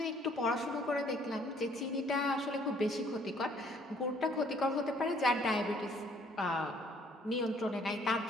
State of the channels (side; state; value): both; normal; correlation 0.61